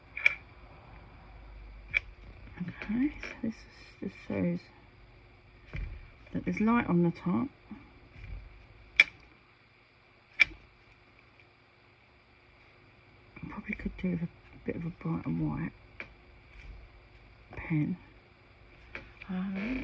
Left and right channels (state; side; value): identical; both; correlation 1.00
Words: Okay, so this just shows that there's light on the top. I probably could do with a bit of a bright and white pen. Let